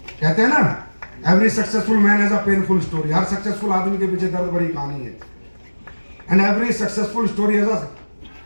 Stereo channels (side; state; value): both; inverted; correlation -1.00